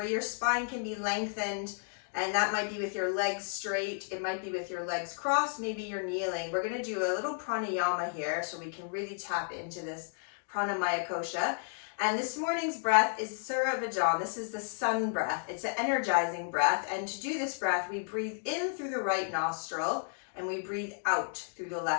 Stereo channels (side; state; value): right; silent; digital silence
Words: your spine can be lengthened, and that might be with your legs straight, it might be with your legs crossed, maybe you're kneeling. We're going to do a little pranayama here so we can really tap into this Pranamaya Kosha. And this morning's breath is Surya Bhajan. This is the sun breath. It's an energizing breath, and to do this breath, we breathe in through the right nostril and we breathe out through the